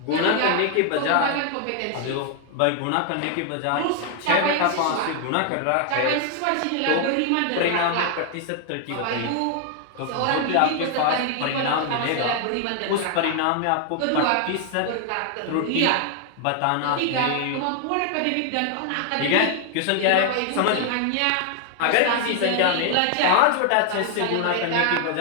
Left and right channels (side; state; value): both; different; correlation 0.00